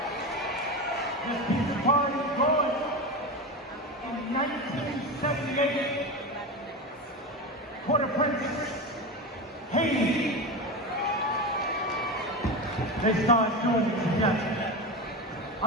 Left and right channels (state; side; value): normal; both; correlation 0.21